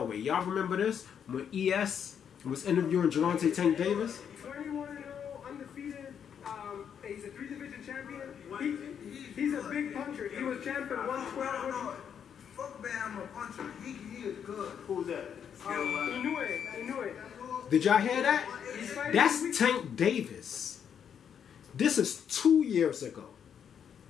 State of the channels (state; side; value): quieter; right; 8.1 dB